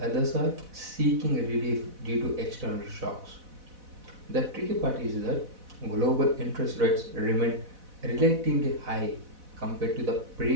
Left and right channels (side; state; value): left; late; 4.0 ms